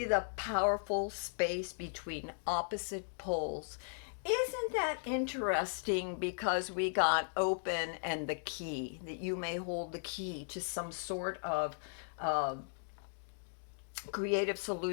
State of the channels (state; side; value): silent; right; digital silence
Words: the powerful space between opposite poles. Isn't that interesting? Because we got open and the key, that you may hold the key to some sort of creative